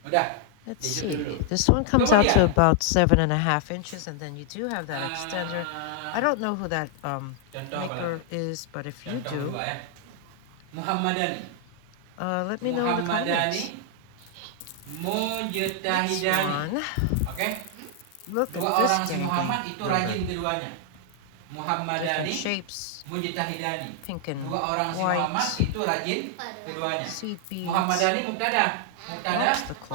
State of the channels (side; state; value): both; different; correlation 0.00